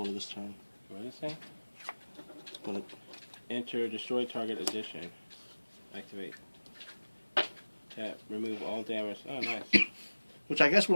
this turn. What is it say? But Enter destroy target addition. Activate. Tap. Remove all damage. Oh, nice. which I guess would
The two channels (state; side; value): inverted; both; correlation -1.00